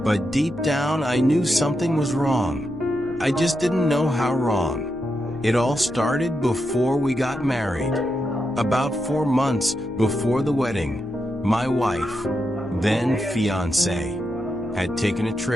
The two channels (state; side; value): noise; left; hum, 23 dB below the sound